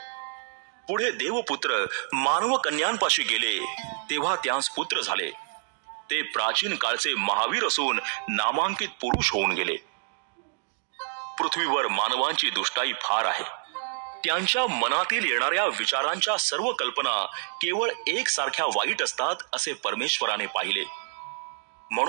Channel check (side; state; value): left; silent; digital silence